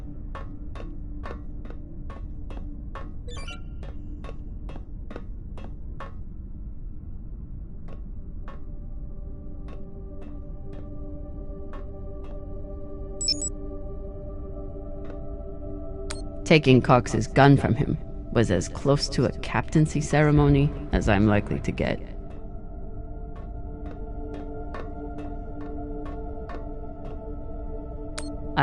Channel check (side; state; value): both; identical; correlation 1.00